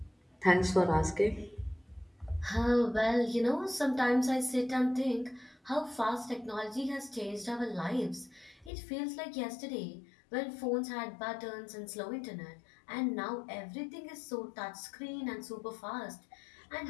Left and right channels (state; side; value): drops out; right; at 8.7 s